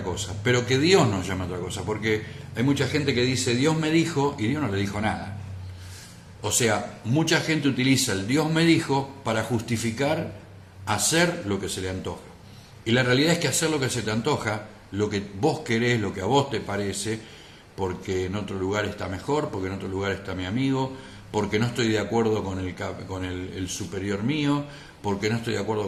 cosa, pero que Dios nos llame a otra cosa, porque hay mucha gente que dice Dios me dijo, y Dios no le dijo nada. O sea, mucha gente utiliza el Dios me dijo para justificar hacer lo que se le antoja. Y la realidad es que hacer lo que se te antoja, lo que vos querés, lo que a vos te parece, porque en otro lugar está mejor, porque en otro lugar está mi amigo, porque no estoy de acuerdo con el superior mío, porque no estoy de acuerdo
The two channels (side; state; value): both; identical; correlation 1.00